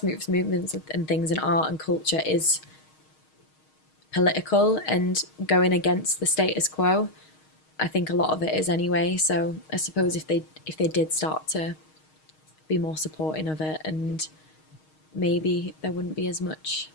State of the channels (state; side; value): late; right; 6.4 ms